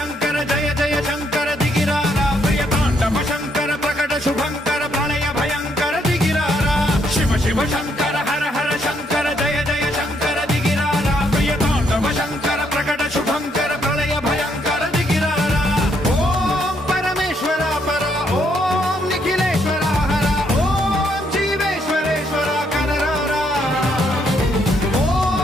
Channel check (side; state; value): both; normal; correlation 0.73